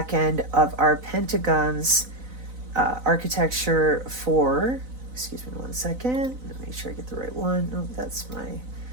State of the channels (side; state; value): left; late; 4.0 ms